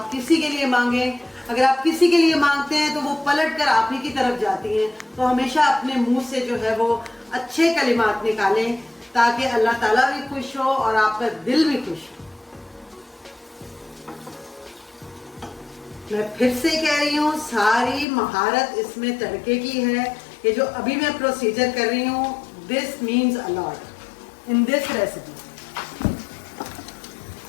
किसी के लिए मांगे। अगर आप किसी के लिए मांगते हैं तो वो पलट कर आप ही की तरफ जाती हैं। तो हमेशा अपने मुंह से जो है वो अच्छे कलिमात निकालें ताकि अल्लाह ताला भी खुश हो और आपका दिल भी खुश हो। मैं फिर से कह रही हूँ, सारी महारत इसमें तड़के की है। ये जो अभी मैं प्रोसीजर कर रही हूँ, this means a lot in this recipe.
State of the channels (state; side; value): drops out; right; at 18.1 s